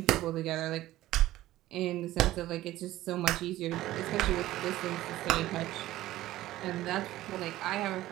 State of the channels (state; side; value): quieter; left; 15.5 dB